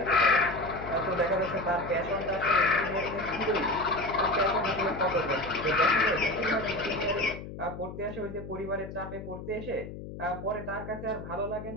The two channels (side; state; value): left; noise; hum, 11 dB below the sound